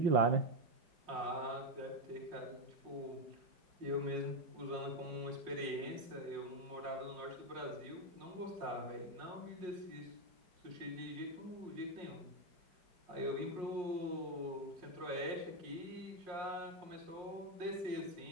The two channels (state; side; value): late; left; 5.5 ms